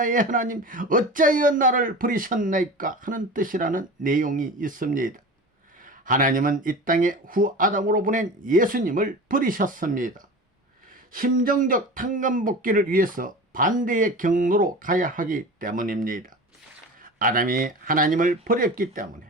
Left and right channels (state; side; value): normal; both; correlation 0.33